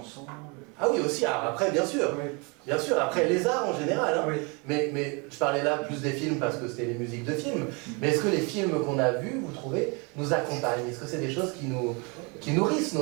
Ah oui, aussi, après, bien sûr. Bien sûr, après les arts en général. Hein. Mais je parlais là plus des films parce que c'était les musiques de films. Mais est-ce que les films qu'on a vus, vous trouvez, nous accompagnent? Est-ce que c'est des choses qui nourrissent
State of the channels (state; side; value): quieter; left; 30.9 dB